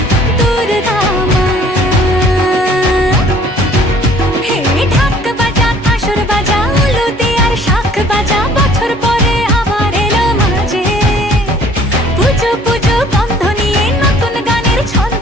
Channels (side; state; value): both; normal; correlation 0.55